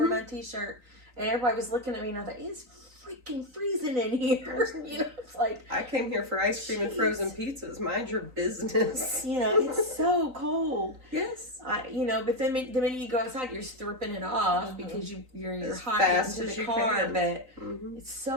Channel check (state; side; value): late; left; 3.9 ms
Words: my t-shirt, and everybody was looking at me and I thought, it's freaking freezing in here. It's like, I came here for ice cream and frozen pizzas. Mind your business. It's so cold. Yes. But then the minute you go outside, you're stripping it off because you're As hot fast into as the you car. can. But it's